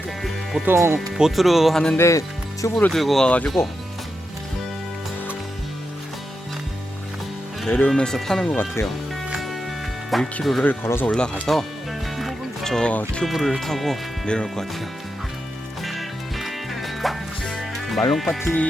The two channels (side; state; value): both; normal; correlation 0.87